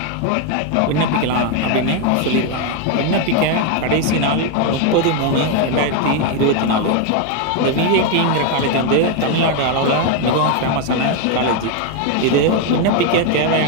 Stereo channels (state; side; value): different; both; correlation 0.01